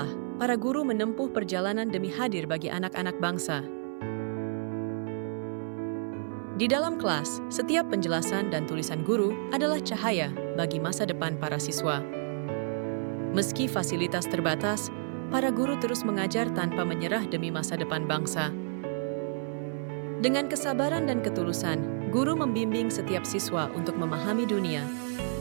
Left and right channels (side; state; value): left; silent; 56 dB below the other